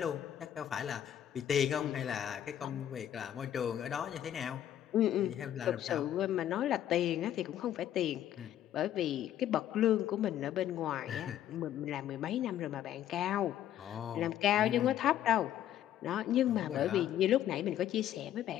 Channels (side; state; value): right; quieter; 11.3 dB